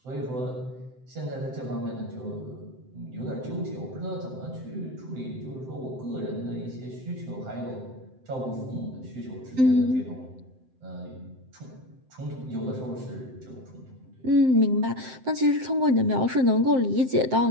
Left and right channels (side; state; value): left; late; 7.7 ms